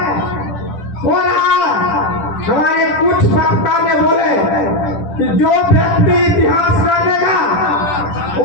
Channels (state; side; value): late; right; 10 ms